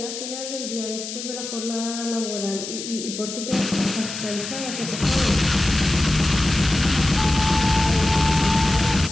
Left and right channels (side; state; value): left; noise; hiss, 8 dB below the sound